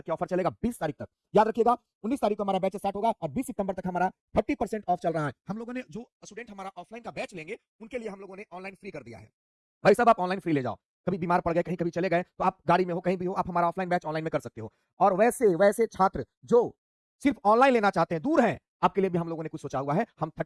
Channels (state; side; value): identical; both; correlation 1.00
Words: की ऑफर चलेगा, 20 तारीख तक। याद रखिएगा, 19 तारीख को हमारा बैच स्टार्ट होगा और 20 सितंबर तक हमारा 30% ऑफ चल रहा है। हम लोगों ने, जो स्टूडेंट हमारा ऑफलाइन का बैच लेंगे, उनके लिए हम लोगों ने ऑनलाइन फ्री कर दिया है। भाई साहब, आप ऑनलाइन फ्री ले जाओ, कभी बीमार पड़ गए, कहीं कभी चले गए, तो आप गाड़ी में हो, कहीं भी हो, आप हमारा ऑफलाइन बैच ऑनलाइन में कर सकते हो। और वैसे छात्र जो सिर्फ ऑनलाइन लेना चाहते हैं, दूर हैं, आपके लिए भी हम लोगों ने कुछ सोचा हुआ है। हम